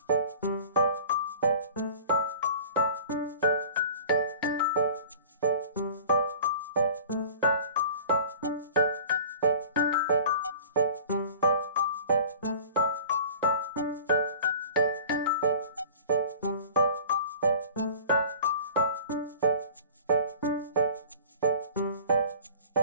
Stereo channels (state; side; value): inverted; both; correlation -0.44